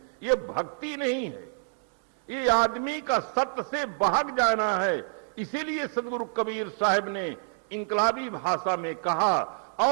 ये भक्ति नहीं है, ये आदमी का सत्य से भाग जाना है। इसीलिए सदगुरु कबीर साहब ने इंकलाबी भाषा में कहा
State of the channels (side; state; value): left; silent; 60 dB below the other